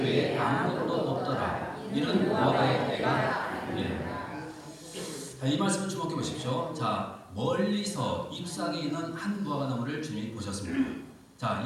외에 아무것도 없더라. 이는 무화과의 때가 자, 이 말씀을 주목해 보십시오. 자, 멀리서 잎사귀 있는 한 무화과 나무를 주님이 보셨습니다. 자,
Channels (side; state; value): both; identical; correlation 1.00